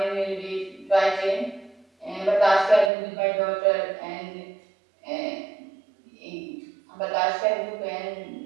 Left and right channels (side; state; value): left; drops out; at 2.9 s